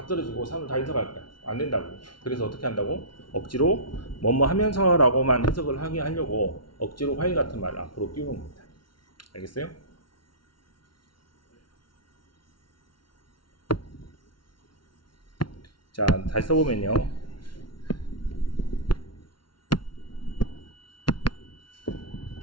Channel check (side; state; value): right; late; 0.72 ms